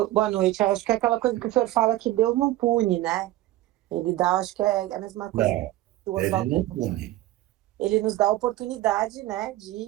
boa noite. Eu acho que é aquela coisa que o senhor fala que Deus não pune, né? Ele dá, acho que é a mesma coisa Não, que o ele Oswaldo não falou. pune. Ele nos dá a oportunidade, né,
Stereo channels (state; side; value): quieter; left; 15.9 dB